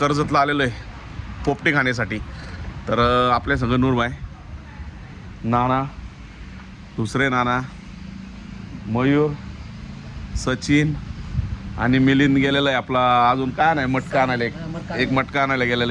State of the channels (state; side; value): identical; both; correlation 1.00